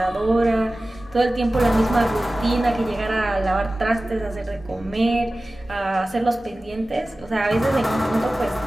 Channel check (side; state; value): both; normal; correlation 0.96